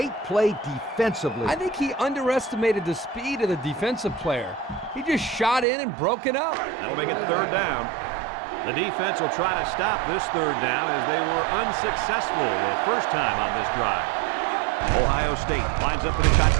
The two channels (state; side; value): drops out; left; at 5.7 s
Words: play defensively. I think he underestimated the speed of the defensive player. He just shot in and broke it up. That'll make it third down. The defense will try to stop this third down as they were unsuccessful the first time on this drive. Ohio State lines up in a